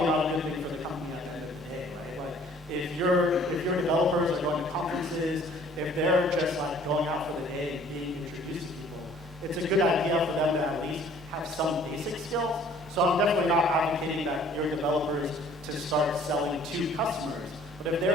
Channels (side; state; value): both; normal; correlation 0.55